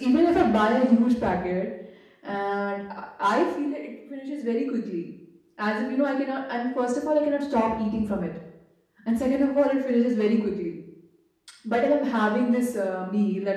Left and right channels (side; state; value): both; identical; correlation 1.00